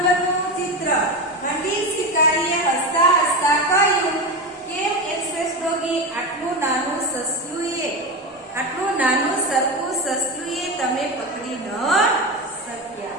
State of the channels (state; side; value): normal; both; correlation 0.19